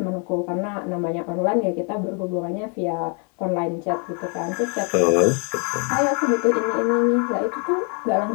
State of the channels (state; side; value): quieter; right; 37.5 dB